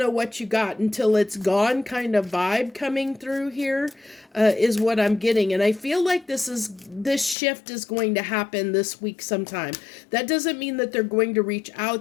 what you got until it's gone kind of vibe coming through here, is what I'm getting. And I feel like this shift is going to happen this week sometime. That doesn't mean that they're going to reach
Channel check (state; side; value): drops out; right; at 7.4 s